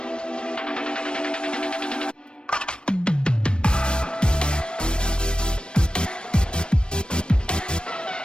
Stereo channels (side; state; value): right; late; 0.054 ms